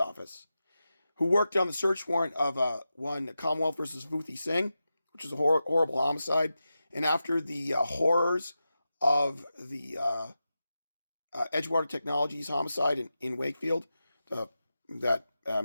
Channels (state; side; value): inverted; both; correlation -0.91